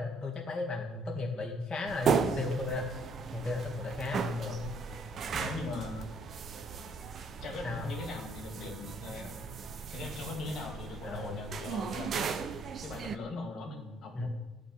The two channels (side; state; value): both; normal; correlation 0.66